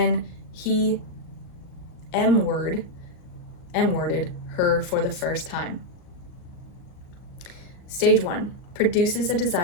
he M-worded her for the first time. Stage 1 produces a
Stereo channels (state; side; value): late; right; 38 ms